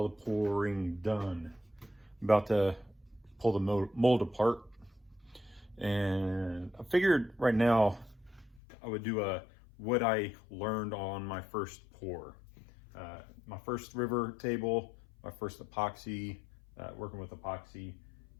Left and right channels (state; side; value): drops out; right; at 8.6 s